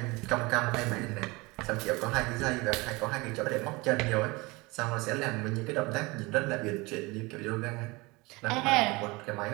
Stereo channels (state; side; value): quieter; left; 24.1 dB